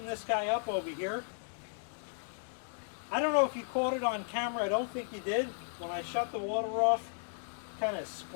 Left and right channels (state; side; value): silent; right; digital silence